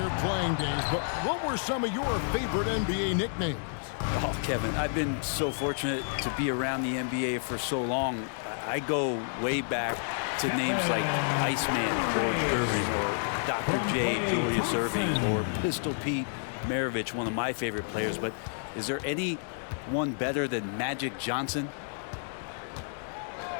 playing days, but what were some of your favorite NBA nicknames? Oh, Kevin, I've been so fortunate to be around the NBA for so long. I go way back to names like Iceman, George Irving, or Dr. J, Julius Erving, or Pistol Pete Maravich, one of my favorite players. But is there anyone better than Magic Johnson?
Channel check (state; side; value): silent; right; digital silence